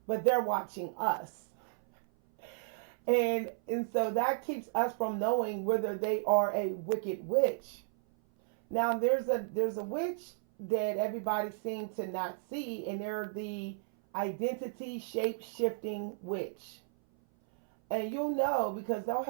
but they're watching us. And so that keeps us from knowing whether they are a wicked witch. Now there's a witch that everybody seems to not see, and they're the identity shape shifting witch. And you'll know because they'll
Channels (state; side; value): silent; left; 55 dB below the other